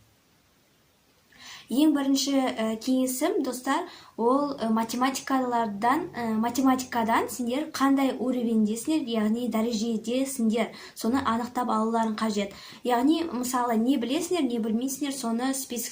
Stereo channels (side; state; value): both; identical; correlation 1.00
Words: Ең бірінші кеңесім, достар, ол математикадан сендер қандай уровендесіңдер, яғни дәрежедесіңдер, соны анықтап алуларың қажет. Яғни, мысалы, не білесіңдер, не білмейсіңдер, соны